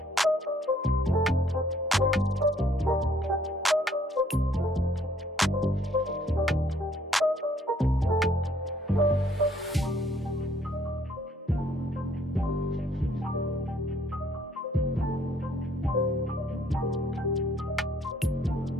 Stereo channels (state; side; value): normal; both; correlation 0.63